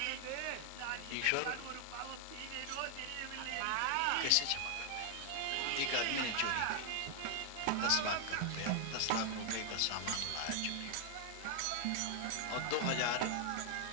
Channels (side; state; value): both; different; correlation 0.00